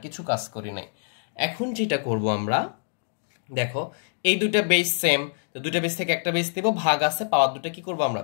কিছু কাজ করি নাই। এখন যেটা করব আমরা, দেখো এই দুইটা বেস সেম, তো দুইটা বেস থেকে একটা বেস দেব, ভাগ আছে, পাওয়ার দুটো কি করব আমরা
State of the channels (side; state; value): right; silent; digital silence